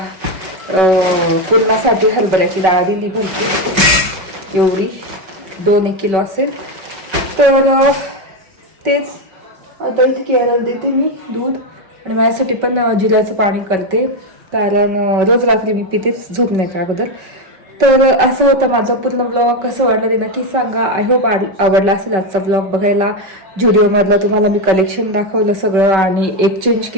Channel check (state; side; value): late; left; 5.3 ms